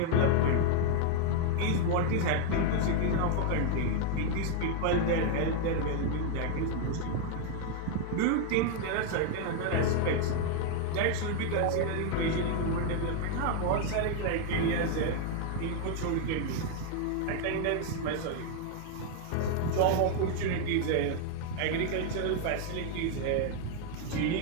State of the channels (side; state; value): both; different; correlation 0.00